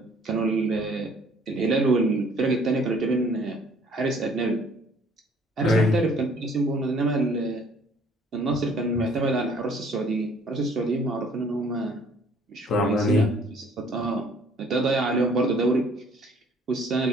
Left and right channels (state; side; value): normal; both; correlation 0.58